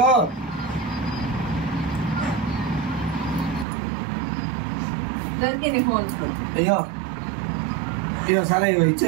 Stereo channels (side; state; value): left; drops out; at 3.7 s